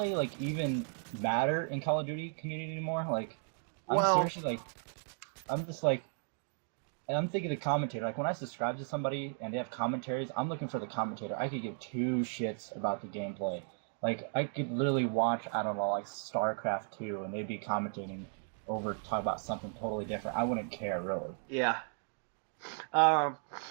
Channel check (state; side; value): silent; left; 54 dB below the other